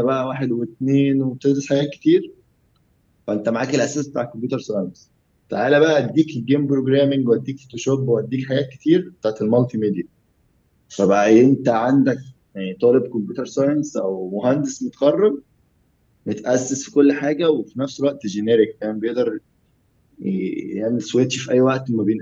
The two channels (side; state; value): both; identical; correlation 1.00